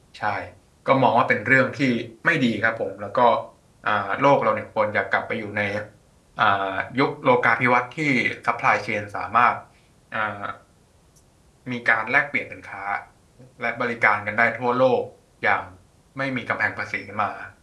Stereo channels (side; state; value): both; identical; correlation 1.00